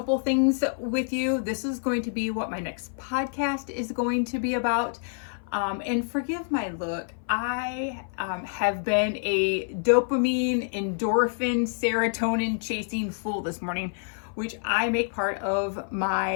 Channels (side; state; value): right; silent; 56 dB below the other